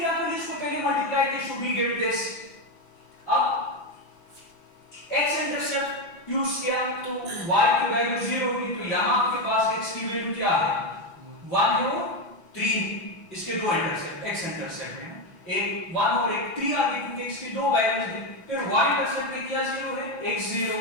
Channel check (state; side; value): late; right; 6.1 ms